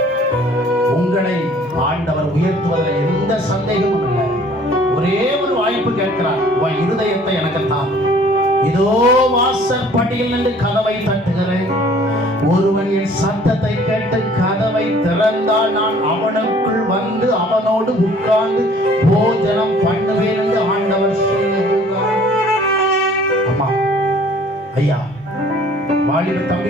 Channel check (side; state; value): both; normal; correlation 0.54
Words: உங்களை ஆண்டவர் உயர்த்துவதில் எந்த சந்தேகமும் இல்லை. ஒரே ஒரு வாய்ப்பு கேட்கிறார், உன் இருதயத்தை எனக்கு தான். இதோ வாசற்படியில் நின்று கதவை தட்டுகிறேன். ஒருவன் என் சத்தத்தை கேட்டு கதவை திறந்தால் நான் அவனுக்குள் வந்து அவனோடு உட்கார்ந்து போஜனம் பண்ணுவேன் என்று ஆண்டவர் சொல்லுகிறார். அம்மா, ஐயா, வாலிப தம்பி,